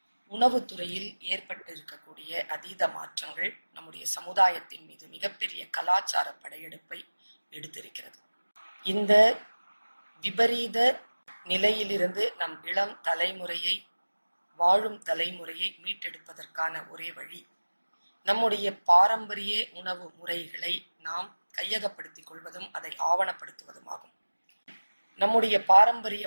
உணவுத்துறையில் ஏற்பட்டிருக்கக்கூடிய அதீத மாற்றங்கள் நம்முடைய சமுதாயத்தின் மீது மிகப்பெரிய கலாச்சார படையெடுப்பை எடுத்திருக்கிறது. இந்த விபரீத நிலையிலிருந்து நம் இளம் தலைமுறையை, வாழும் தலைமுறையை மீட்டெடுப்பதற்கான ஒரே வழி நம்முடைய பாரம்பரிய உணவு முறைகளை நாம் கையகப்படுத்திக் கொள்வதும் அதை ஆவணப்படுத்துவதுமாகும். நம்முடைய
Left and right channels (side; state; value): both; inverted; correlation -1.00